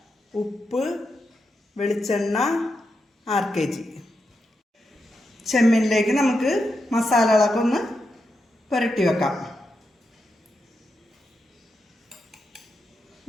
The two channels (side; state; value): both; normal; correlation 0.86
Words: ഉപ്പ്, വെളിച്ചെണ്ണ 6 kg. ചെമ്മീനിലേക്ക് നമുക്ക് മസാലകളൊക്കെ ഒന്ന് പുരട്ടി വെക്കാം.